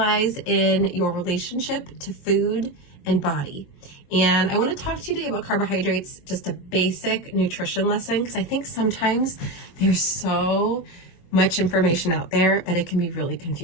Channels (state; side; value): late; right; 23 ms